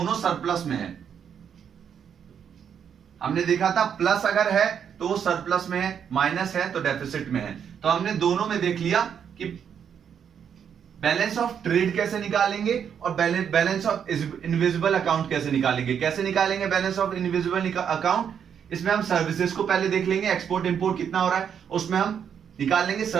सरप्लस में है। हमने देखा था प्लस अगर है तो वो सरप्लस में है, माइनस है तो डेफिसिट में है। तो हमने दोनों में देख लिया कि बैलेंस ऑफ ट्रेड कैसे निकालेंगे और बैलेंस ऑफ इनविजिबल अकाउंट कैसे निकालेंगे। कैसे निकालेंगे बैलेंस ऑफ इनविजिबल अकाउंट, इसमें हम सर्विसेज को पहले देख लेंगे, एक्सपोर्ट इंपोर्ट कितना हो रहा है, उसमें हम निकाल लेंगे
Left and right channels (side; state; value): left; quieter; 8.0 dB